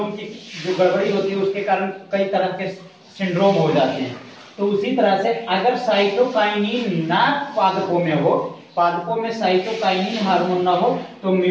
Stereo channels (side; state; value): both; identical; correlation 1.00